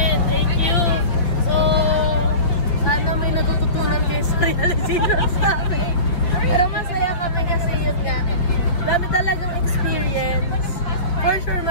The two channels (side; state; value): right; late; 5.8 ms